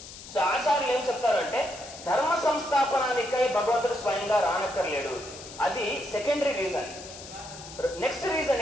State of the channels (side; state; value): left; noise; hiss, 15 dB below the sound